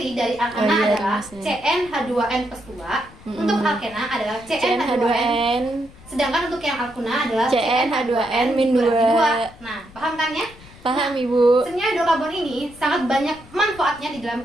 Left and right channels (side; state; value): left; noise; rumble, 22 dB below the sound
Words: dari alkana Oh, iya, adalah rumusnya. CnH2n plus 2. Untuk alkena adalah CnH2n. CnH2n, Sedangkan untuk yang alkuna adalah CnH2n min 2. Nah, paham kan ya? Paham Ibu? Senyawa hidrokarbon ini sangat banyak manfaatnya di dalam